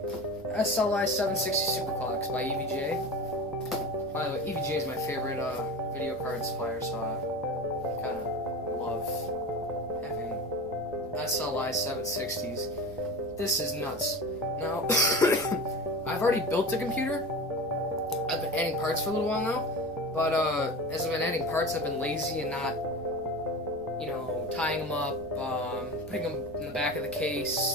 SLI 760 Superclocks by EVGA. By the way, EVGA is my favorite video card supplier, so I kind of love having SLI 760s. This is nuts. Now, I've already built the computer. I've been adding parts for a little while now, but as I've been adding parts, I've been lazy and not, tying them up, putting them in the back of the case.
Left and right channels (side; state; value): right; noise; rumble, 20 dB below the sound